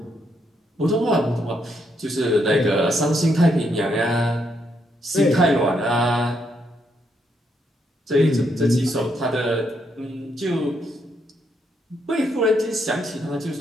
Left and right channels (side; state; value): both; normal; correlation 0.76